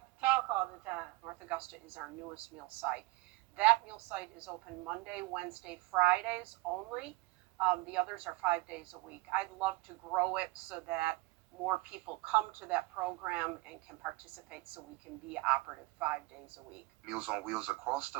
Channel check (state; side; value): quieter; left; 21.6 dB